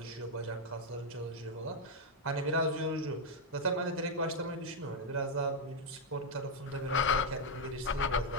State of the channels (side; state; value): both; normal; correlation 0.00